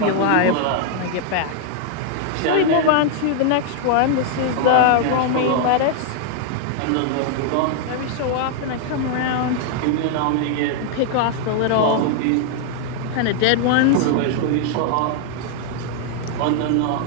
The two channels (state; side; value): different; both; correlation 0.00